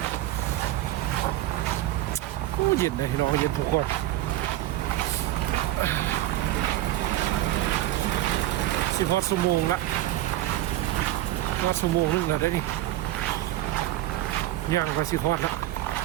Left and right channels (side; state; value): left; quieter; 14.5 dB